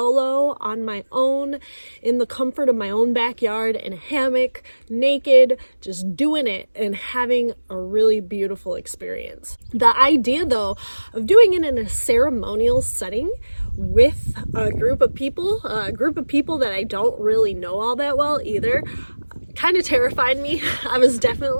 on my own in the comfort of my own backyard in a hammock, naked, just doing it and having a really beautiful experience. The idea though of doing it in a ceremonial setting with a group of people that I don't really know all that well either, kind of terrified me. I was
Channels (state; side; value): inverted; both; correlation -1.00